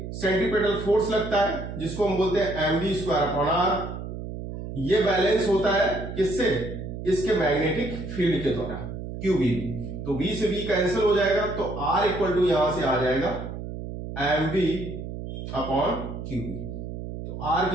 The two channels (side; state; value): right; noise; hum, 8 dB below the sound